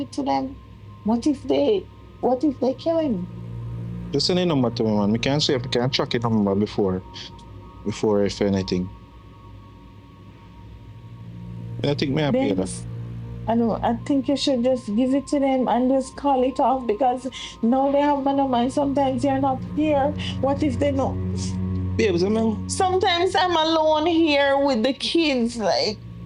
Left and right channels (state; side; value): identical; both; correlation 1.00